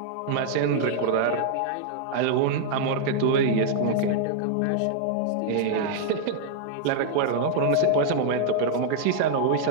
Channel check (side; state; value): both; different; correlation -0.01